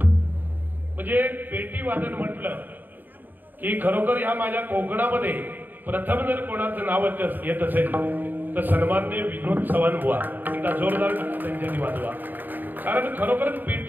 म्हणजे पेटी वादन म्हटलं की खरोखर या माझ्या कोकणामध्ये प्रथम जर कोणाचं नाव येत असेल तर सन्माननीय विनोद चव्हाण बुवा. एकदा जोरदार त्यांच्यानी वाजवा. कारण खरोखरच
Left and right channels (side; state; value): left; late; 0.089 ms